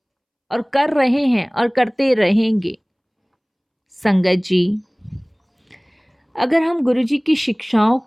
और कर रहे हैं और करते रहेंगे। संगत जी, अगर हम गुरुजी की शिक्षाओं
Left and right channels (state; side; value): identical; both; correlation 1.00